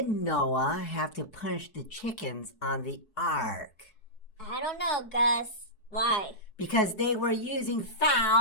Noah have to punish the chickens on the ark? I don't know, Gus. Why? Because they were using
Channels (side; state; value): right; late; 4.6 ms